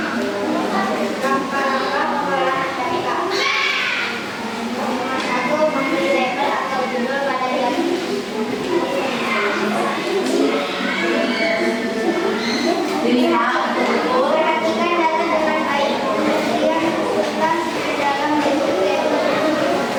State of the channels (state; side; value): identical; both; correlation 1.00